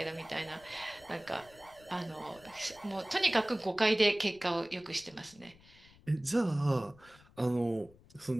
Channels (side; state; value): left; noise; rumble, 25 dB below the sound